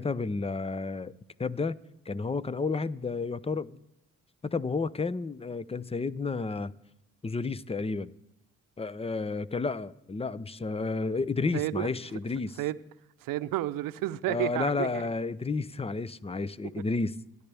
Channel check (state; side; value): normal; both; correlation 0.52